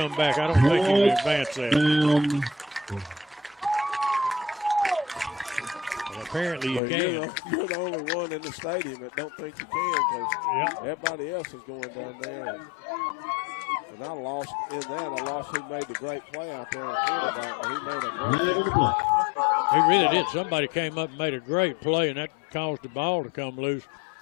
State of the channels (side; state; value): right; drops out; at 6.8 s